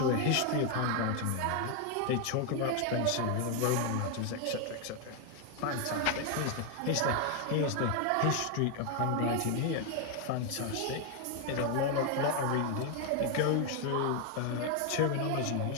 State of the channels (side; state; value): both; different; correlation 0.01